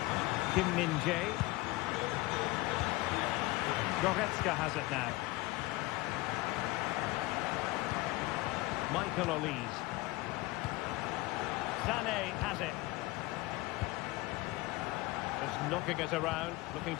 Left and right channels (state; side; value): quieter; right; 20.3 dB